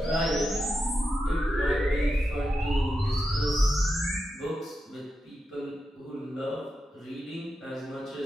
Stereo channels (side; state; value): both; normal; correlation 0.88